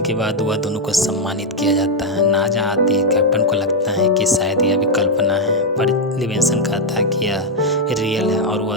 के बाद वह दोनों को सम्मानित किया जाता है। नाजा आती है, कैप्टन को लगता है कि शायद यह भी कल्पना है, पर लिविंगस्टन कहता है कि यह रियल है और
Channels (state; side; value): normal; both; correlation 0.01